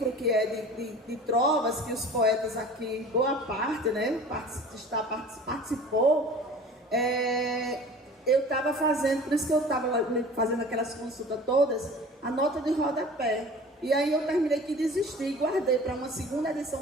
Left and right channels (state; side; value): normal; both; correlation 0.42